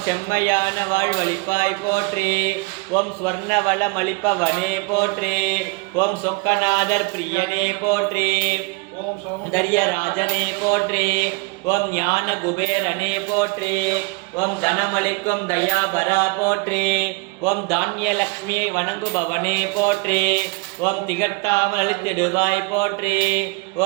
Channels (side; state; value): left; quieter; 28.8 dB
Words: செம்மையான வாழ்வளிப்பாய் போற்றி ஓம் ஸ்வர்ண வளம் அளிப்பவனே போற்றி ஓம் சொக்கநாதர் பிரியனே போற்றி ஓம் சௌந்தர்ய ராஜனே போற்றி ஓம் ஞான குபேரனே போற்றி. ஓம் தனமளிக்கும் தயாபரா போற்றி. ஓம் தானியலக்ஷ்மியை வணங்குபவனே போற்றி. ஓம் திகட்டாமல் அளித்திடுவாய் போற்றி.